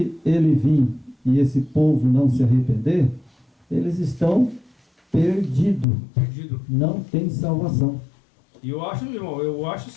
ele vir e esse povo não se arrepender, eles estão perdidos. Não tem salvação. E eu acho, irmão,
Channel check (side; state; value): right; drops out; at 5.9 s